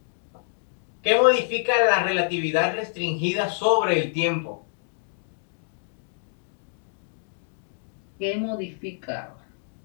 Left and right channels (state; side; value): silent; right; digital silence